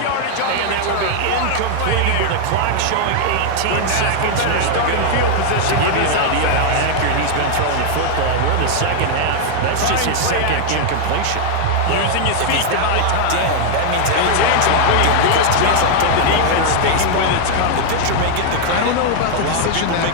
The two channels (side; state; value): both; different; correlation 0.00